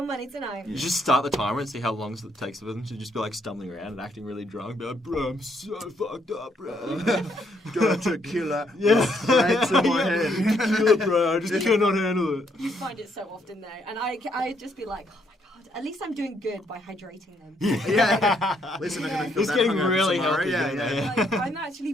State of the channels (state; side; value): normal; both; correlation 0.72